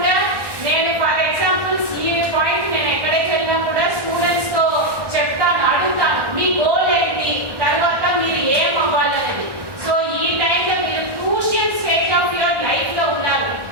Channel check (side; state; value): left; late; 1.1 ms